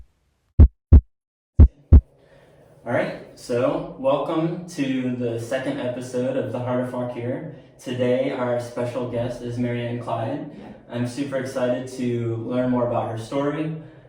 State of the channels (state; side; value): identical; both; correlation 1.00